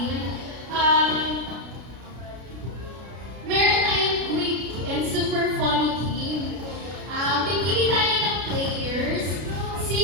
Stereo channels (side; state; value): left; late; 33 ms